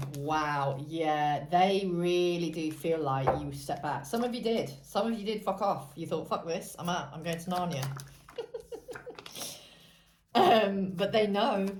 Wow, yeah, they really do feel like you stepped back. Some of you did. Some of you did fuck off. You thought, fuck this, I'm out. I'm going to Narnia. But they know.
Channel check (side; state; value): both; identical; correlation 1.00